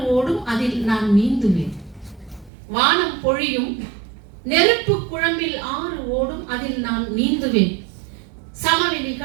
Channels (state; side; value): drops out; left; at 2.5 s